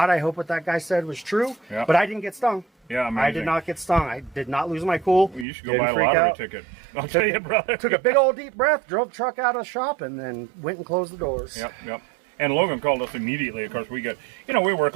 I hope what that guy said was true. Yeah. But I didn't get stung. Yeah, amazing. I did not get stung. I did not lose my cool. Well, you should go buy a lottery ticket. I'll tell you, brother. Took a big old deep breath, drove the truck out of the shop, and then went and closed the doors. Yep. And Logan called us immediately. Of course, we get, we work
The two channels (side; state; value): left; drops out; at 5.5 s